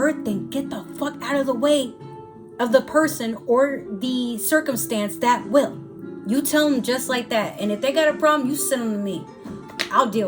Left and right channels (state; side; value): identical; both; correlation 1.00